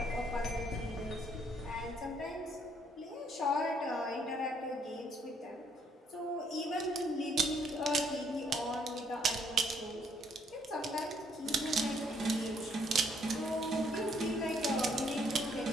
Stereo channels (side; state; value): both; normal; correlation 0.67